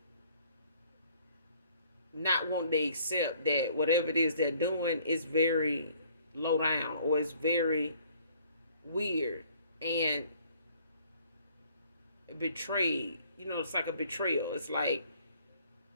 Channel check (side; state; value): both; inverted; correlation -0.59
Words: not wanting to accept that whatever it is they're doing is very low down or it's very weird and betrayed. It's like a betrayal. It's like